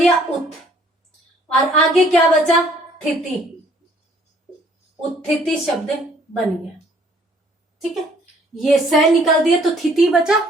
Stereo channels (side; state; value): both; normal; correlation 0.60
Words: उत, और आगे क्या बचा, थिति, उत्थिति शब्द बन गया, ठीक है। ये स निकाल दिया तो थिति बचा,